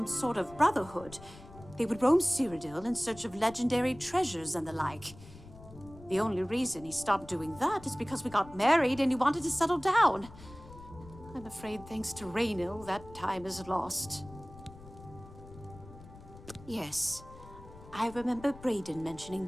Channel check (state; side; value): noise; left; rumble, 18 dB below the sound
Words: sort of brotherhood. They would roam Cyrodiil in search of legendary treasures and the like. The only reason he stopped doing that is because we got married and he wanted to settle down. I'm afraid thanks to Raynal, that time is lost. Yes, I remember Brayden mentioning